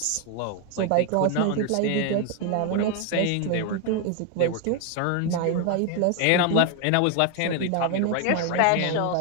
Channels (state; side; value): different; both; correlation 0.01